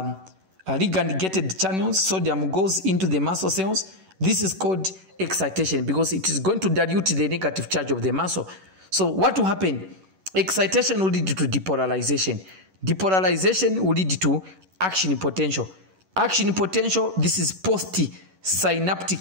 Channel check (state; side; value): late; left; 11 ms